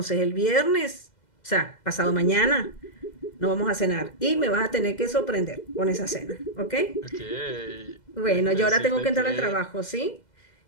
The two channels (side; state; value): right; late; 2.0 ms